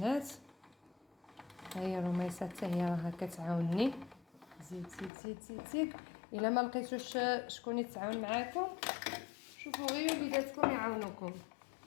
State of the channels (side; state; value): right; drops out; at 5.1 s